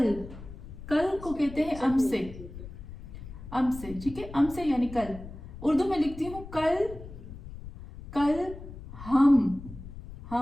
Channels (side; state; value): left; noise; rumble, 13 dB below the sound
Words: कल को कहते हैं अमसे, अमसे, ठीक है। अमसे यानी कल। उर्दू में लिखती हूँ कल, कल हम